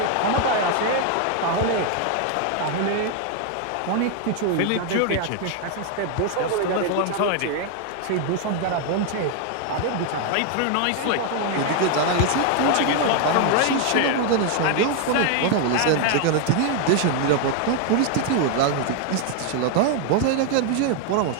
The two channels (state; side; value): different; both; correlation 0.00